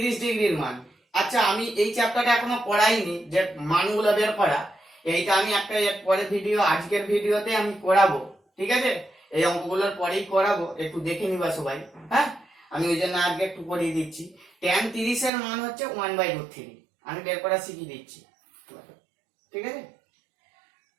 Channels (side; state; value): left; drops out; at 15.3 s